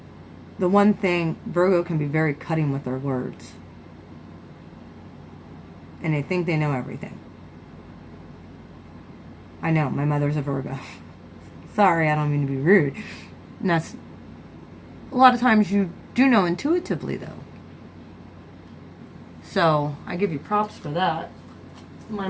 the one thing, Virgo can be very cutting with their words. And they think they know everything. I know, my mother's a Virgo. Sorry, I don't mean to be rude. And that's, a lot of times you do know intuitively, though. So, I give you props for that. My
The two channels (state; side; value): identical; both; correlation 1.00